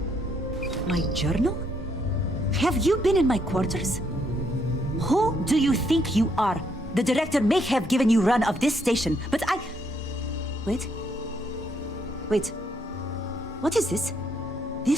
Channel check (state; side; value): normal; both; correlation 0.72